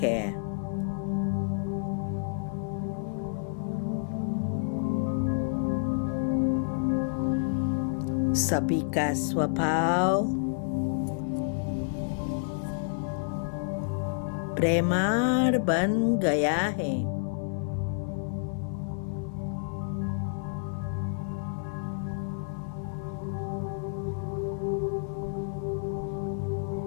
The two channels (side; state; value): right; silent; digital silence